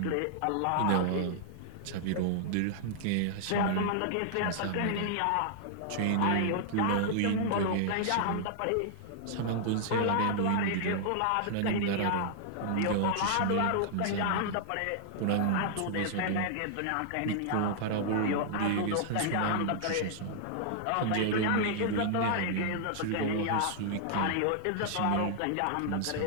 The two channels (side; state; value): both; different; correlation -0.01